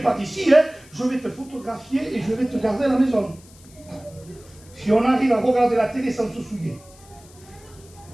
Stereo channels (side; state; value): left; noise; hiss, 24 dB below the sound